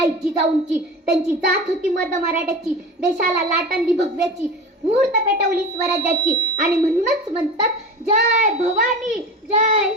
जिजाऊंची. त्यांची जात होती मर्द मराठ्याची. देशाला लाट आणली भगव्याची. मुहूर्त पेटवली स्वराज्याची आणि म्हणूनच म्हणतात जय भवानी जय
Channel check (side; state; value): both; normal; correlation 0.32